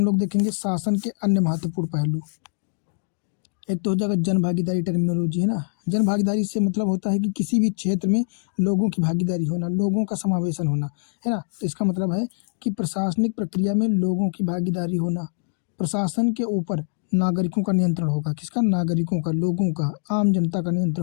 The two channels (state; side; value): silent; right; digital silence